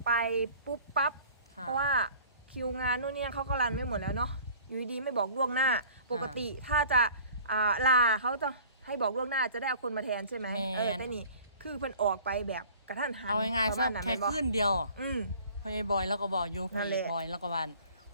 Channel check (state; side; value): inverted; both; correlation -0.49